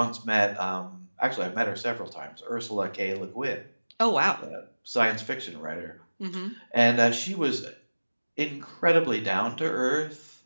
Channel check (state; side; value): inverted; both; correlation -1.00